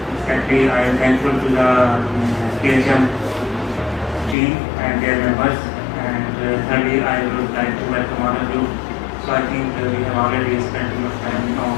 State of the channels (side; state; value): right; drops out; at 4.4 s